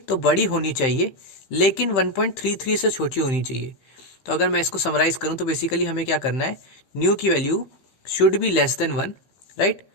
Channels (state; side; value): late; right; 15 ms